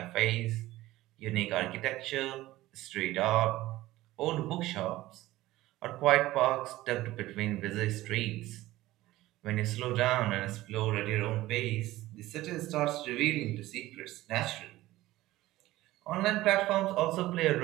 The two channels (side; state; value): left; quieter; 16.9 dB